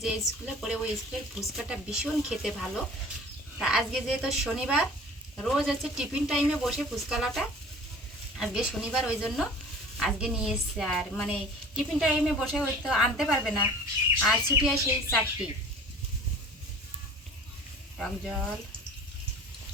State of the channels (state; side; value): normal; both; correlation 0.45